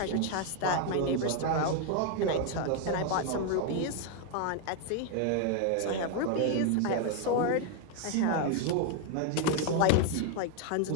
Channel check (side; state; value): both; different; correlation 0.00